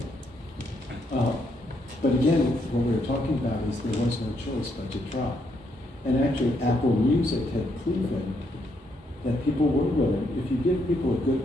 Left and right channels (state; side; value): normal; both; correlation 0.76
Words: But again, what we were talking about is there was no choice but to try. And actually, Apple Music had proven that people were willing, if you give people a good